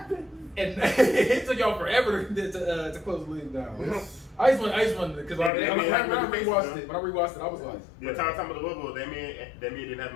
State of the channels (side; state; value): right; drops out; at 5.5 s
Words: and it took y'all forever to close the league down. I just want because when I rewatched it, I was like, The time of the bubble, that mean didn't have